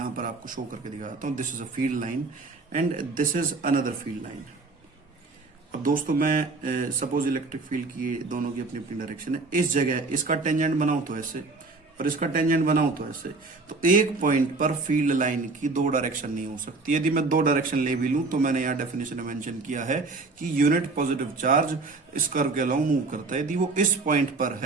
पर आपको शो करके दिखाता हूं, this is a field line and this is another field line. अब दोस्तों मैं सपोज इलेक्ट्रिक फील्ड की दोनों की अपनी अपनी डायरेक्शन है, इस जगह इसका टेंजेंट बनाऊं तो ऐसे और इसका टेंजेंट बनाऊं तो ऐसे, तो एक पॉइंट पर फील्ड लाइन की दो डायरेक्शन नहीं हो सकती। यदि मैं दो डायरेक्शन ले भी लूं तो मैंने यहाँ डेफिनेशन में मेंशन किया है कि यूनिट पॉजिटिव चार्ज इस कर्व के अलावा मूव करता है। यदि वो इस पॉइंट पर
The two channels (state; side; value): quieter; left; 3.7 dB